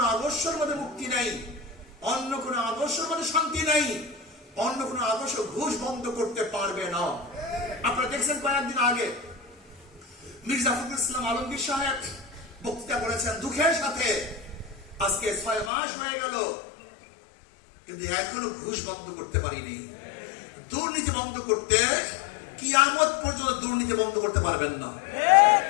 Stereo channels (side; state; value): right; drops out; at 15.7 s